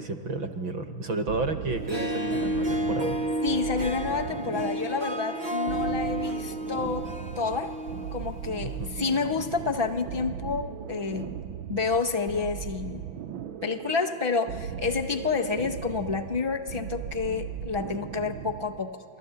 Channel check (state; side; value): late; left; 6.0 ms